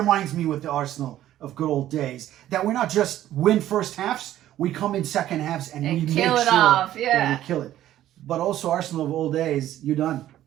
me with the Arsenal of good old days that we're not just win first halves, we come in second halves and we kill make it sure off, that yeah. we kill it. But also Arsenal of old days, you're done.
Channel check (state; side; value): quieter; left; 12.9 dB